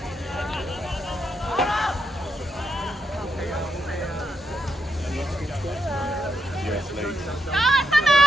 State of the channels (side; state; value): both; normal; correlation 0.81